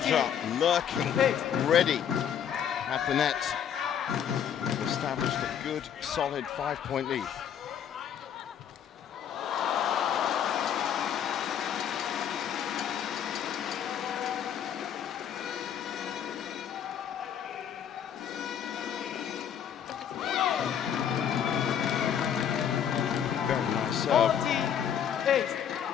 lurking, ready at the net. Established a good, solid 5-point lead. Very nice serve. 48.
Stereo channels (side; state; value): right; quieter; 8.8 dB